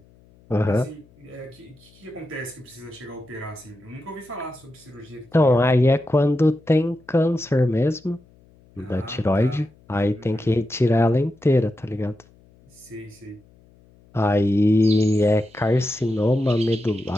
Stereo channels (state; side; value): noise; left; hum, 29 dB below the sound